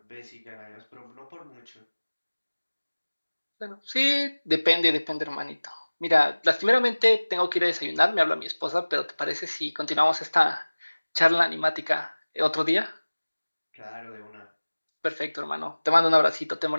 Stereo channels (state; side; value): inverted; both; correlation -1.00